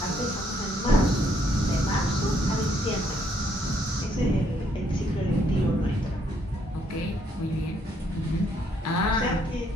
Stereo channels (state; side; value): normal; both; correlation 0.70